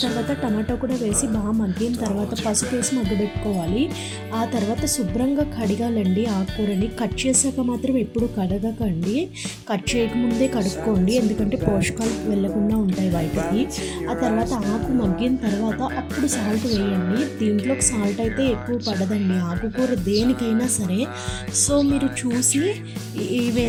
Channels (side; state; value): both; identical; correlation 1.00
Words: తర్వాత టమాటో కూడా వేసి బాగా మగ్గిన తర్వాత పసుపు వేసి మగ్గబెట్టుకోవాలి. ఆ తర్వాత శుభ్రంగా కడగాలండి ఆకుకూరని. కట్ చేసాక మాత్రం ఎప్పుడు కడగకండి, కట్ చేయకముందే కడుక్కోండి, ఎందుకంటే పోషకాలు వెళ్ళకుండా ఉంటాయి బయటకి. ఆ తర్వాత ఆకు మగ్గిన తర్వాత అప్పుడు సాల్ట్ వేయండి. దీంట్లోకి సాల్ట్ అయితే ఎక్కువ పడదండి ఆకుకూర దేనికైనా సరే. సో మీరు చూసి